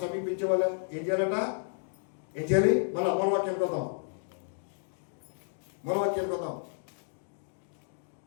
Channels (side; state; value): right; silent; digital silence